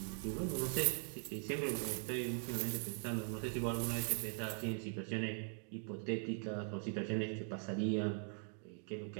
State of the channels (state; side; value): silent; left; 50 dB below the other